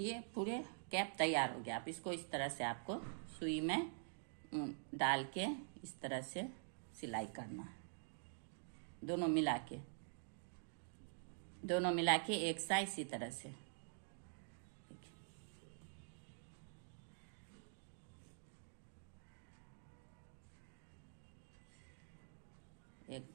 पूरे कैप तैयार हो गया। आप इसको इस तरह से आपको सुई में डाल के इस तरह से सिलाई करना है। दोनों मिला के एक साइड इसी तरह से। एक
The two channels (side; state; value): left; silent; digital silence